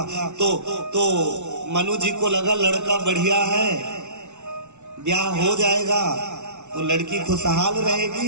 तो मनु जी को लगा लड़का बढ़िया है, ब्याह हो जाएगा तो लड़की खुशहाल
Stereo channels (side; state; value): left; late; 0.83 ms